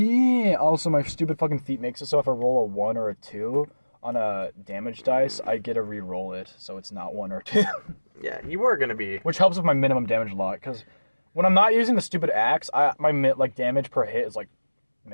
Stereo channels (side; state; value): both; inverted; correlation -1.00